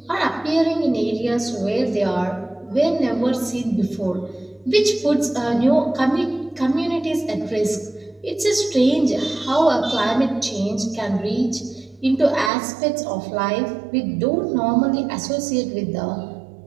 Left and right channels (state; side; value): drops out; left; at 12.5 s